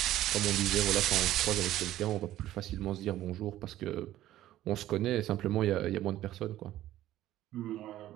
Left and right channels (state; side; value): quieter; left; 13.9 dB